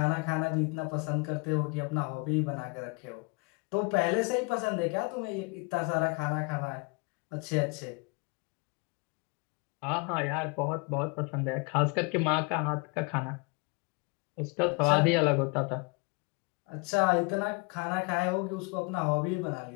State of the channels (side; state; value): right; quieter; 30.2 dB